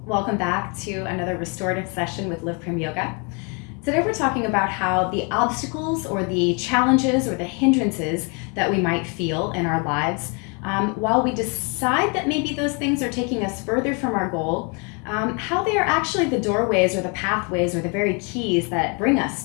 Welcome back to another restorative session with Live Prim Yoga. Today we're talking about how the obstacles or the challenges or the hindrances that we might feel in our lives, while we decide that maybe those things are taking us further from our goal, how they are actually the doorways or the pathways or the very keys that bring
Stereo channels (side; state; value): right; quieter; 34.0 dB